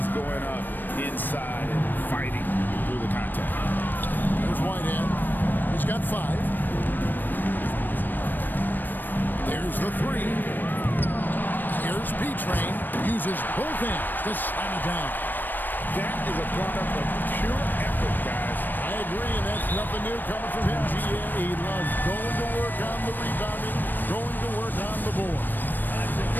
going up inside and fighting through the contact. Here's Whitehead. He's got 5. There's the 3. Here's B-Train. Uses both hands to slam it down. That is a product of pure effort, guys. I agree, and that's nothing new coming from him. He loves going to work on the rebounding, going to work on the board.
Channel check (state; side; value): late; right; 0.091 ms